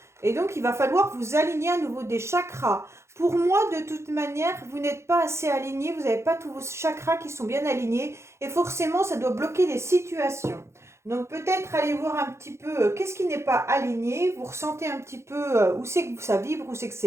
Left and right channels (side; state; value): left; late; 0.13 ms